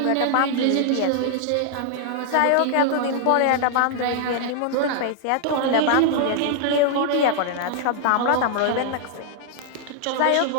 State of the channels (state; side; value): different; both; correlation -0.01